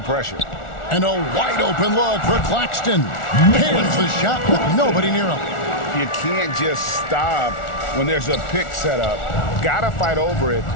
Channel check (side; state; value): right; late; 1.4 ms